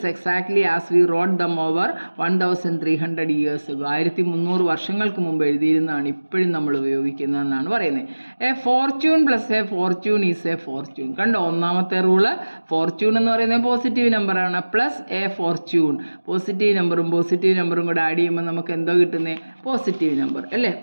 exactly as we wrote them over 1300 years ago. 1300 വർഷങ്ങൾക്ക് മുമ്പ് എഴുതിയിരുന്നതാണ് ഇപ്പോഴും നമ്മൾ ഉപയോഗിക്കുന്നതെന്നാണ് പറയുന്നത്. A Fortune plus A Fortune is a Fortune. കണ്ടോ, ഒന്നാമത്തെ റൂള് ഫോർച്യൂൺ എന്ന് പറയുന്നത് positive നമ്പറാണ്, പ്ലസ് എ ഫോർച്യൂൺ പോസിറ്റീവ് നമ്പറും കൂടെ ആഡ് ചെയ്യുമ്പോൾ നമുക്ക് എന്തോ കിട്ടുന്നത്? പോസിറ്റീവ് നമ്പർ അല്ലേ.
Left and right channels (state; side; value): inverted; both; correlation -1.00